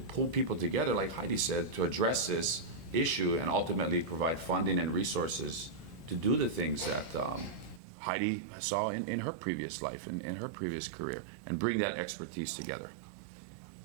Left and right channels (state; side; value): drops out; left; at 7.8 s